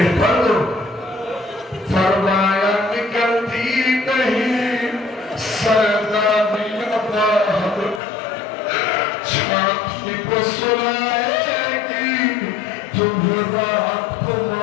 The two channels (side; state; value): right; drops out; at 8.0 s